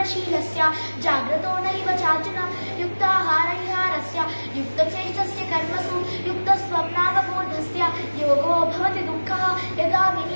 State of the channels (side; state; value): both; inverted; correlation -1.00